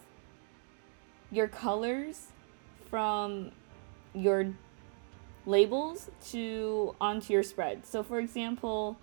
your colors from your labels onto your spread. So for example,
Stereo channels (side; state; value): left; silent; 54 dB below the other